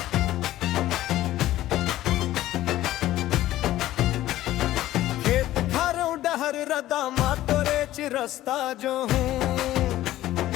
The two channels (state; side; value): quieter; right; 14.6 dB